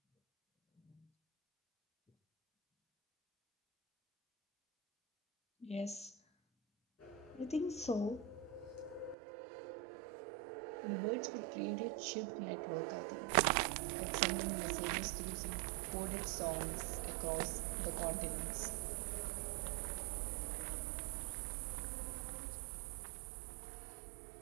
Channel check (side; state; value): left; drops out; at 9.2 s